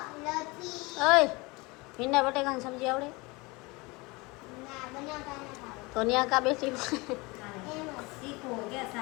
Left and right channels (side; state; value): right; quieter; 24.9 dB